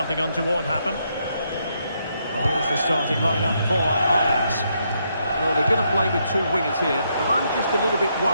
untoward happened. Well, here's the starting lineup for Ajax. Well, they're going to play with 2 wingers here, but I'm just a little bit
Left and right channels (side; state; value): both; inverted; correlation -0.77